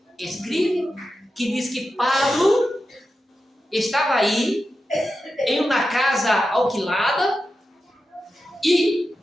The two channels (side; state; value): both; normal; correlation 0.91